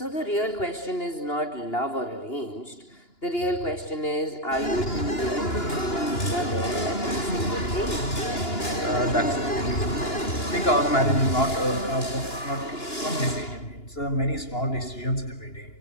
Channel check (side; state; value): right; late; 2.9 ms